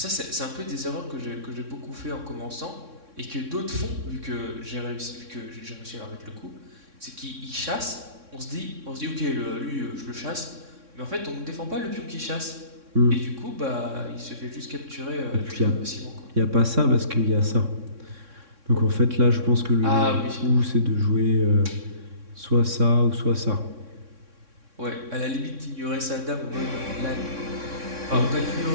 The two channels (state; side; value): late; left; 3.6 ms